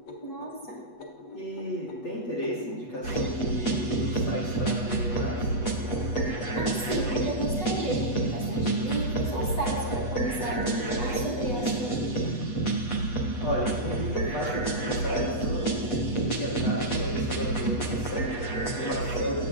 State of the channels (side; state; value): right; late; 8.2 ms